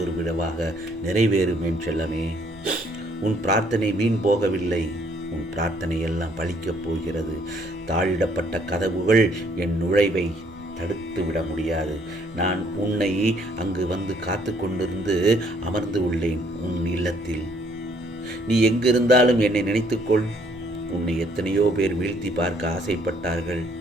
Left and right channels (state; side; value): normal; both; correlation 0.65